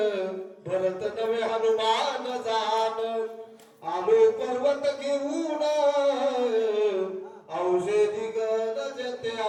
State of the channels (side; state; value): both; identical; correlation 1.00